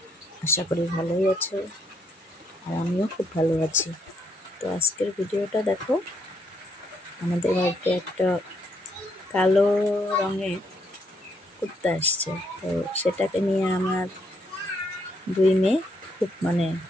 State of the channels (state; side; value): normal; both; correlation 0.73